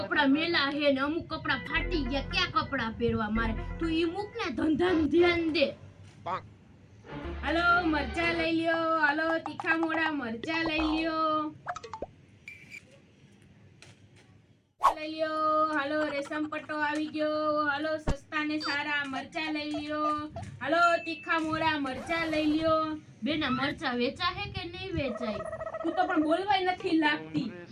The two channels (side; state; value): both; identical; correlation 1.00